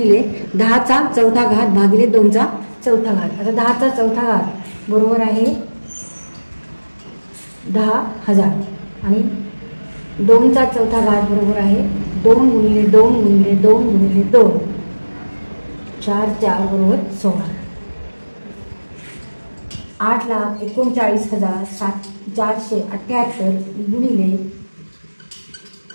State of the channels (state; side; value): inverted; both; correlation -1.00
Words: 10चा चौथा घात भागिले 2चा चौथा घात. आता 10चा चौथा घात बरोबर आहे 10,000 आणि 2चा चौथा घात बरोबर आहे 2 गुणिले 2 गुणिले 2 गुणिले 2, 4 4 बरोबर 16. 8,39,478 गुणिले